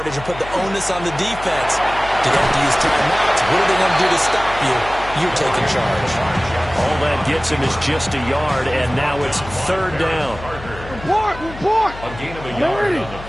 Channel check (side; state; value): left; noise; hum, 14 dB below the sound